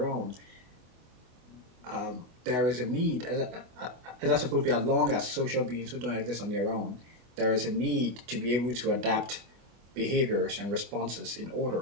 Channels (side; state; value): left; late; 24 ms